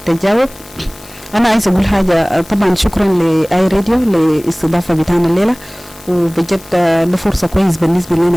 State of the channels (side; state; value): left; noise; hiss, 22 dB below the sound